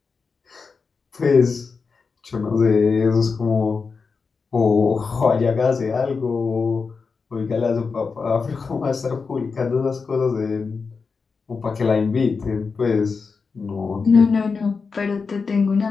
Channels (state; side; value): quieter; right; 4.9 dB